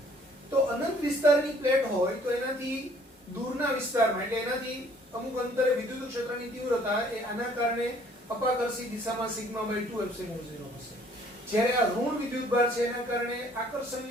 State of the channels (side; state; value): both; normal; correlation 0.59